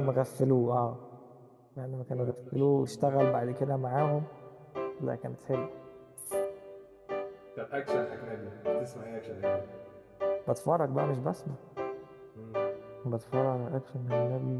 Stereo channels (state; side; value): identical; both; correlation 1.00